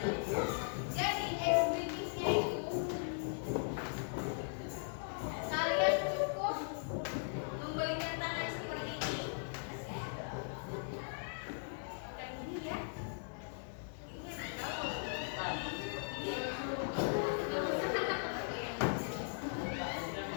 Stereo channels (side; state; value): right; silent; digital silence